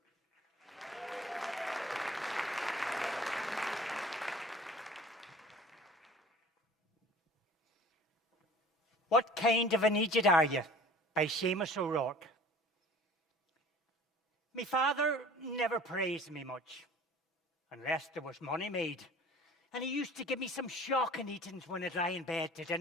What kind of an idiot are you? By Seamus O'Rourke. My father never praised me much, unless there was money made. And he used to give me some shocking eatings when I'd lie in bed to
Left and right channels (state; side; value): normal; both; correlation 0.46